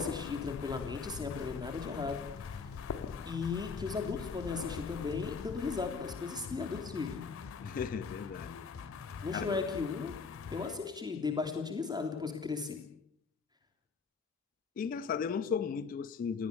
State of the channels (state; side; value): quieter; right; 5.1 dB